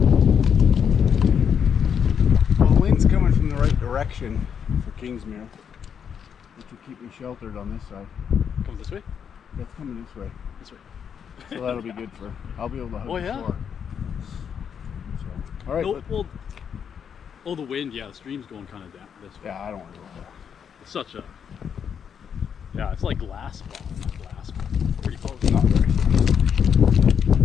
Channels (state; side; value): quieter; right; 7.6 dB